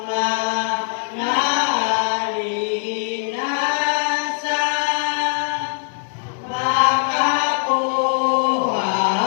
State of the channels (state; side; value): silent; right; 58 dB below the other